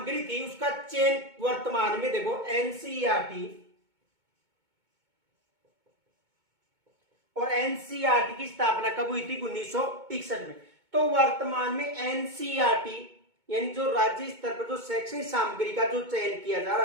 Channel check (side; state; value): left; late; 2.2 ms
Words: थी उसका चयन वर्तमान में देखो एनसीईआरटी और एनसीईआरटी की स्थापना कब हुई थी? 1961 में। तो वर्तमान में एनसीईआरटी यानी जो राज्य स्तर पर जो शैक्षणिक सामग्री का जो चयन किया जा